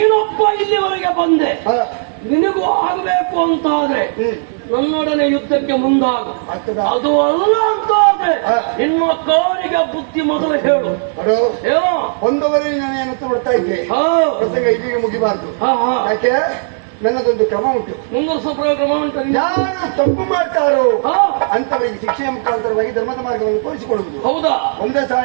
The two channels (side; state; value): left; silent; digital silence